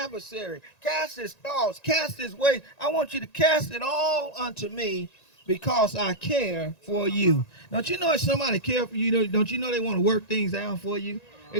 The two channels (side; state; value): right; late; 1.9 ms